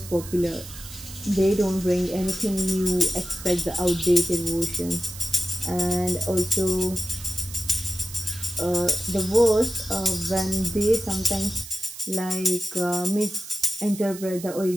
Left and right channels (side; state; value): right; noise; hiss, 14 dB below the sound